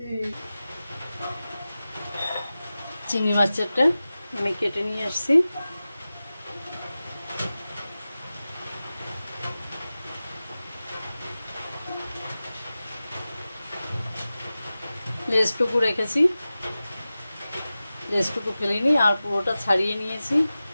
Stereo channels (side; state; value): both; inverted; correlation -0.95